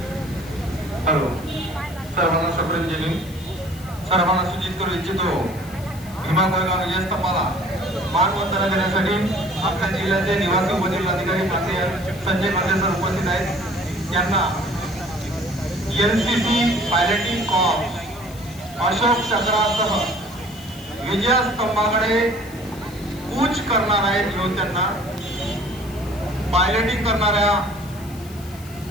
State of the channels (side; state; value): left; noise; hiss, 20 dB below the sound